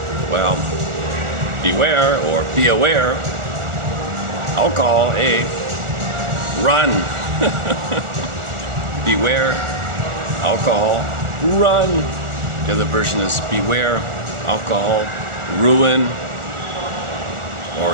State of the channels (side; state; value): left; late; 1.4 ms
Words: well, beware or be aware. Alcohol, A, run. Beware, alcohol, run. The other version is beware, alcohol, ruin.